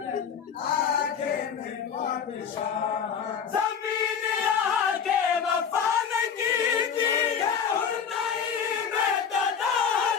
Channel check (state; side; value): quieter; right; 7.2 dB